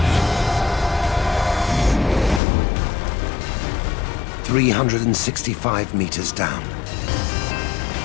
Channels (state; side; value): drops out; right; at 2.4 s